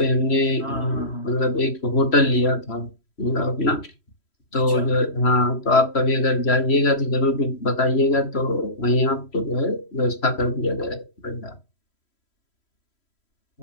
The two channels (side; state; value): right; late; 3.1 ms